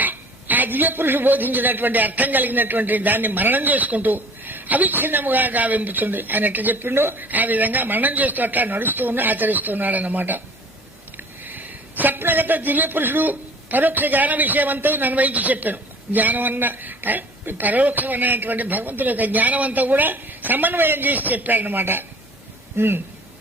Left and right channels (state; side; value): normal; both; correlation 0.49